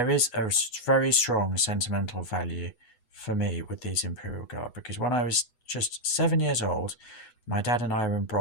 is a very strong sentimental value for me with these Imperial Guard, because when I was just 7 years old, my dad and I were in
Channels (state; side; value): late; right; 8.1 ms